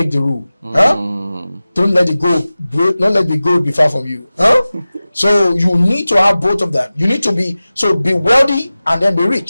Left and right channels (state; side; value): inverted; both; correlation -0.96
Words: the rule. Don't let the gold be far from you. So you need to have both of them. You need to be wealthy and then be